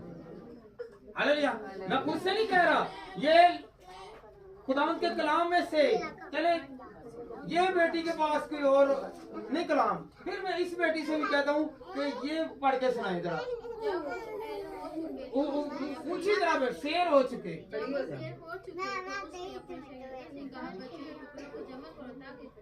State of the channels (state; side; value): identical; both; correlation 1.00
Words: हालेलुया। मैं खुद से नहीं कह रहा, ये खुदा के कलाम में से चले। ये बेटी के पास कोई और नहीं कलाम, फिर मैं इस बेटी से भी कहता हूँ कि ये पढ़ के सुनाए जरा। पूछी जरा, शेर हो चुके